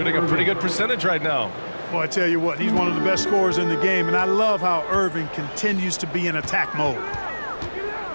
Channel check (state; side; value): inverted; both; correlation -1.00